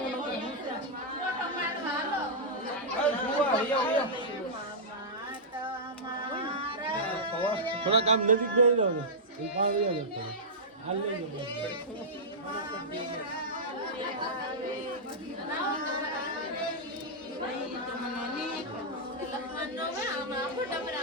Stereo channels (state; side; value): normal; both; correlation -0.11